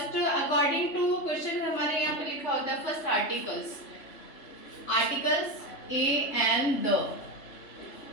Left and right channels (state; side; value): late; right; 3.1 ms